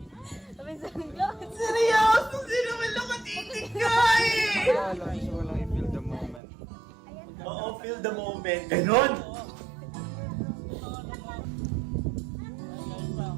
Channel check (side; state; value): left; drops out; at 6.4 s